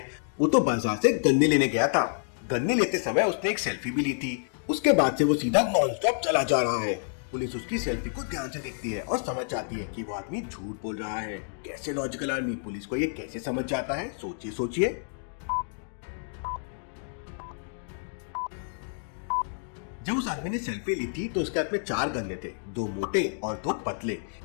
वो तो बाजार से गन्ने लेने गया था। गन्ने लेते समय उसने एक सेल्फी भी ली थी। उसके बाद से वो सीधा नॉन स्टॉप चला जा रहा है। पुलिस उसकी सेल्फी को ध्यान से देखती है और समझ जाती है कि वो आदमी झूठ बोल रहा है। कैसे लॉजिकल आदमी पुलिस को ये कैसे समझ जाता है, सोचिए सोचिए। जब उस आदमी ने सेल्फी ली थी तो उसके हाथ में 4 गन्ने थे, 2 मोटे और 2 पतले,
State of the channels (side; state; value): right; silent; digital silence